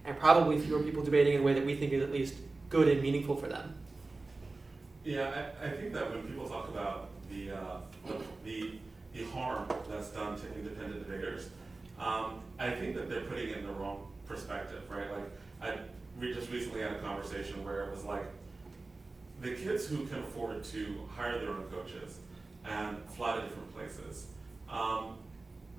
and probably fewer people debating in a way that we think is at least good and meaningful for them. Yeah, I think that when people talk about the harm that's done to independent debaters, I think that they're putting it in the wrong perspective, right? Like, we just recently had a conversation where it was like, the kids who can afford to hire their own coaches and fly to different places, all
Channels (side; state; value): left; quieter; 3.4 dB